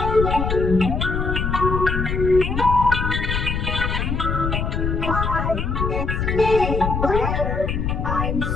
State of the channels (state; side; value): noise; left; rumble, 1 dB below the sound